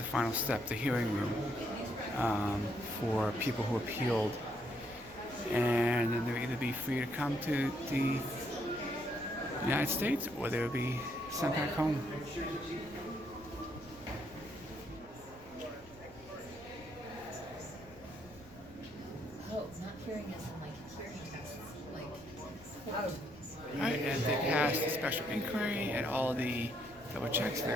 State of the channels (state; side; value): noise; left; rumble, 22 dB below the sound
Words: final step, the hearing room for people who appealed, and then they would either be free to come to the United States or they would be sent back home. Oh, not hearing us in like hearing tests. Right, and they passed the special inquiry and all the double checks. They